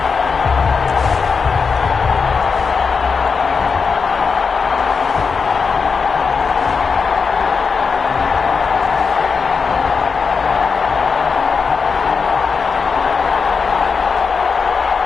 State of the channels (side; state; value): right; quieter; 5.3 dB